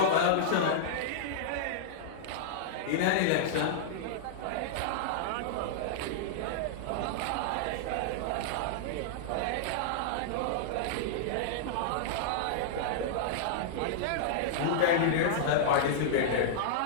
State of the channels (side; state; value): both; different; correlation -0.02